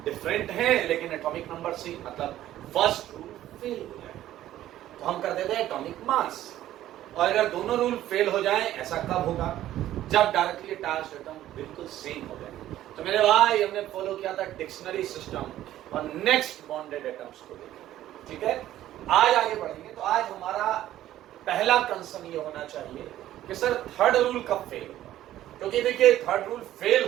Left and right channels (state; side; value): quieter; left; 13.3 dB